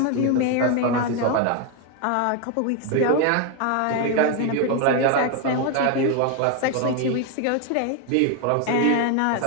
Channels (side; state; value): both; different; correlation 0.01